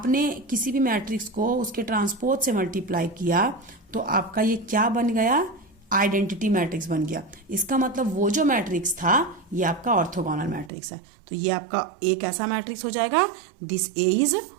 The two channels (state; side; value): drops out; left; at 10.7 s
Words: किसी भी मैट्रिक्स को उसके ट्रांसपोज से मल्टीप्लाई किया तो आपका ये क्या बन गया, आइडेंटिटी मैट्रिक्स बन गया। इसका मतलब वो जो मैट्रिक्स था ये आपका ऑर्थोगोनल मैट्रिक्स है। तो ये आपका एक ऐसा मैट्रिक्स हो जाएगा, this A is